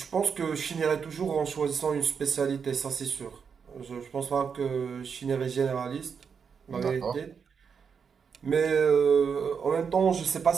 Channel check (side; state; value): left; quieter; 6.4 dB